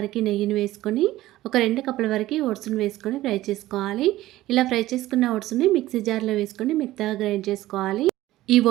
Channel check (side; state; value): left; quieter; 15.9 dB